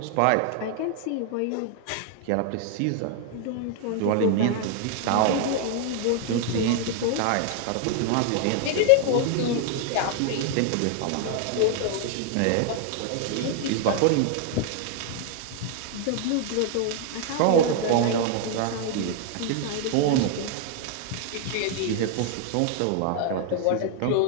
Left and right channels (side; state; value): both; different; correlation 0.00